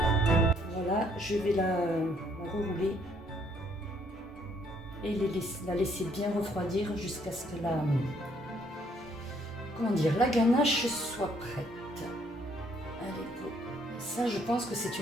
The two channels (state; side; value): normal; both; correlation 0.67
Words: Je vais la rerouler et la laisser bien refroidir jusqu'à ce que la ganache soit prête. Allez, go. Ça, je pense que c'est